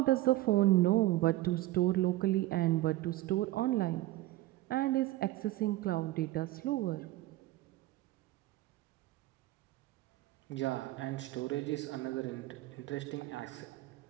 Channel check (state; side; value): quieter; left; 17.1 dB